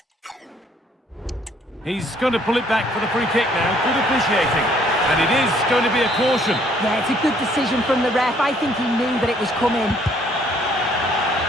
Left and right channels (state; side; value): normal; both; correlation 0.63